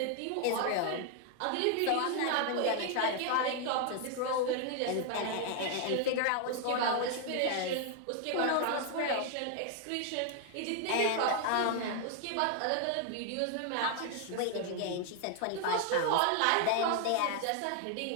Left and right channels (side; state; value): both; different; correlation 0.00